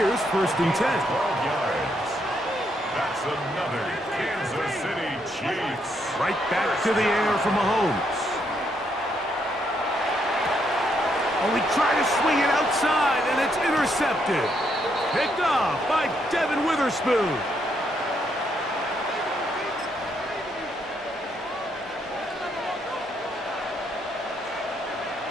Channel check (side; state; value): both; normal; correlation 0.75